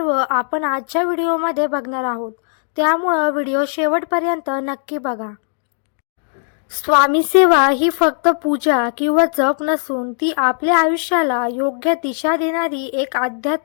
आपण आजच्या व्हिडिओमध्ये बघणार आहोत, त्यामुळं व्हिडिओ शेवटपर्यंत नक्की बघा. स्वामी सेवा ही फक्त पूजा किंवा जप नसून ती आपल्या आयुष्याला योग्य दिशा देणारी एक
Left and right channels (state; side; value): silent; right; 67 dB below the other